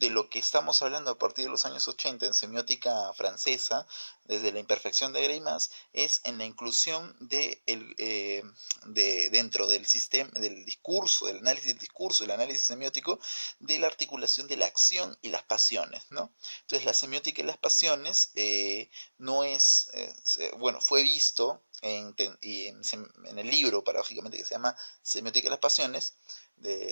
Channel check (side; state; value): both; inverted; correlation -1.00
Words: lo que estamos hablando a partir de los años 80 en semiótica francesa, desde la imperfección de Greimas, es en la inclusión dentro del sistema, del discurso, del análisis del análisis semiótico, de la articulación de la acción y las pasiones, ¿no? Entonces la semiótica y las pasiones no es, bueno, fue visto en el libro, paradójicamente, que se llama Semiótica y las pasiones,